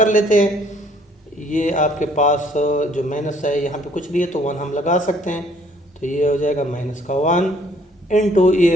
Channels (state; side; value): normal; both; correlation 0.61